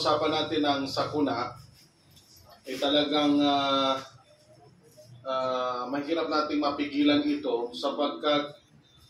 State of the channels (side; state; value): both; identical; correlation 1.00